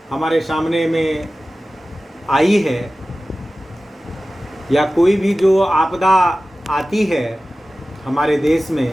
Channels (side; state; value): both; normal; correlation 0.96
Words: हमारे सामने में आई है, या कोई भी जो आपदा आती है हमारे देश